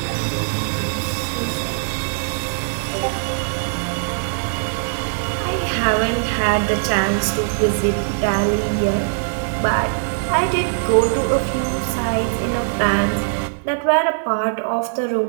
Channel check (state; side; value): silent; left; digital silence